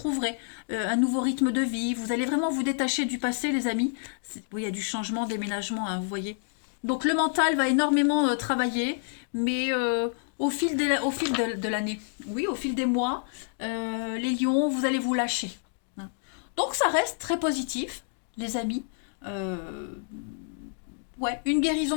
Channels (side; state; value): right; silent; digital silence